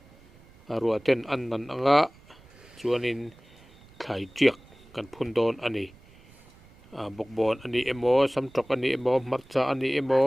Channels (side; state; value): right; noise; rumble, 25 dB below the sound